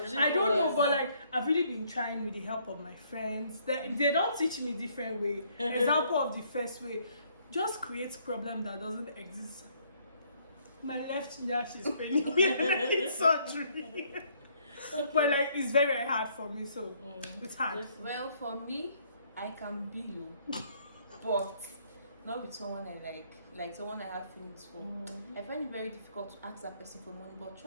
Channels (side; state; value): both; inverted; correlation -0.66